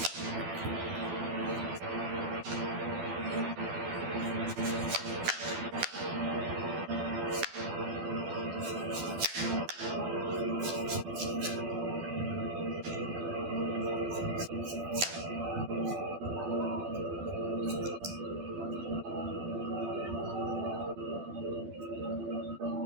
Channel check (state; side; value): late; left; 12 ms